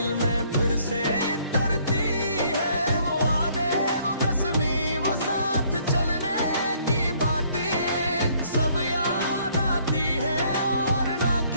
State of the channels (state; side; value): inverted; both; correlation -0.63